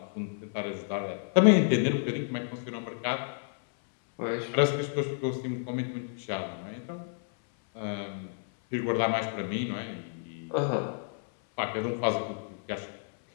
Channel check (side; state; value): right; silent; 58 dB below the other